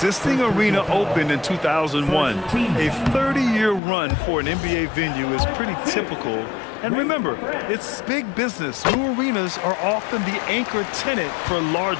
arena opened in 2001. A 30-year run for an NBA venue is pretty typical. And remember, it's big business. New arenas are often the anchor tenant for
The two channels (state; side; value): drops out; right; at 3.8 s